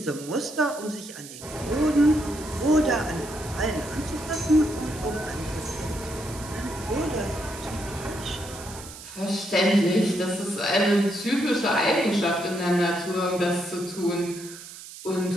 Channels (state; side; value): noise; right; hiss, 14 dB below the sound